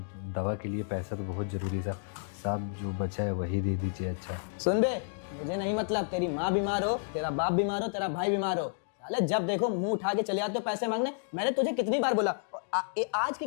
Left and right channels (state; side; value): silent; right; digital silence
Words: दवा के लिए पैसा तो बहुत ज़रूरी है साहब। जो बचा है वही दे दीजिए। अच्छा सुन बे, मुझे नहीं मतलब तेरी माँ बीमार हो, तेरा बाप बीमार हो, तेरा भाई बीमार हो, साले जब देखो मुंह उठा के चले आते हो पैसे मांगने। मैंने तुझे कितनी बार बोला, आज की